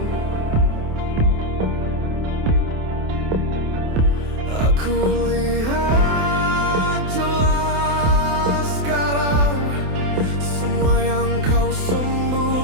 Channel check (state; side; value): late; left; 28 ms